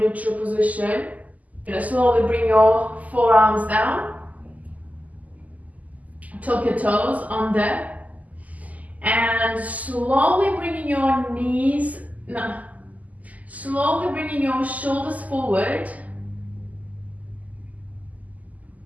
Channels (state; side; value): late; left; 0.076 ms